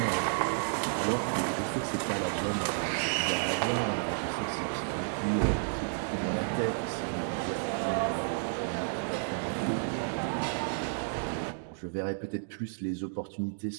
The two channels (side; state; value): left; silent; digital silence